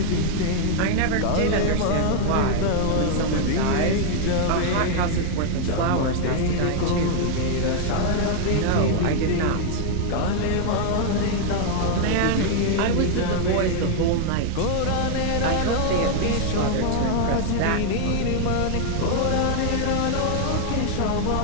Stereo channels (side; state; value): both; different; correlation 0.00